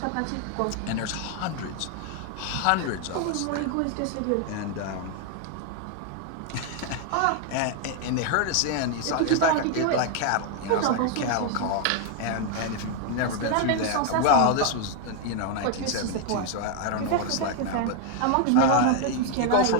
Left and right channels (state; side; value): different; both; correlation 0.01